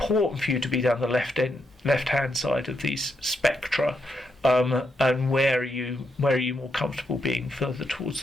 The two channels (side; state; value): both; normal; correlation 0.80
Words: for you to be down the left-hand side of these spectra, and where are you more comfortable being further towards